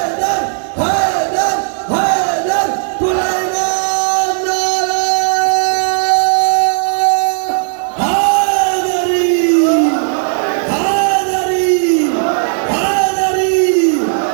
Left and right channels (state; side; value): silent; left; digital silence